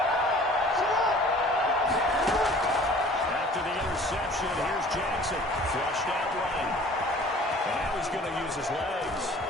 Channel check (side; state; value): both; normal; correlation 0.49